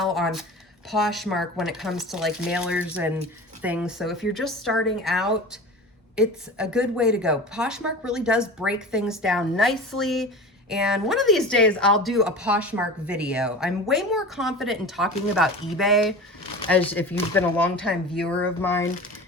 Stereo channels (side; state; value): both; normal; correlation 0.34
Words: on Poshmark when it comes to like mailers and things. So if you're just starting out, it's a good way to go. Poshmark really does break things down nicely. And one of these days I'll do a Poshmark video. I'm way more confident in talking about eBay, as if you've been a longtime viewer of mine,